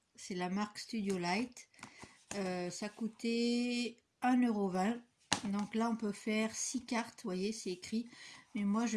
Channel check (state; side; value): identical; both; correlation 1.00